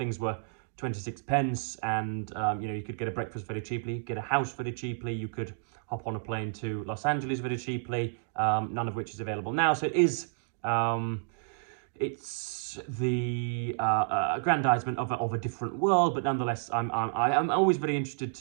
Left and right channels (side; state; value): left; silent; digital silence